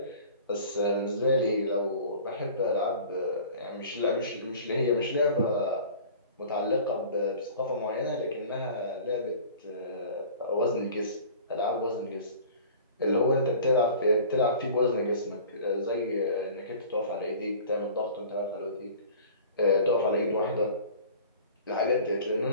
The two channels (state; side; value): inverted; both; correlation -0.44